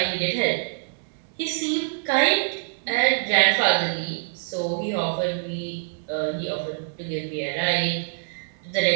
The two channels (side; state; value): left; silent; digital silence